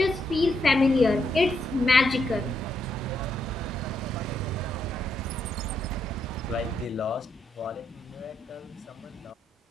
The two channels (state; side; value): normal; both; correlation 0.79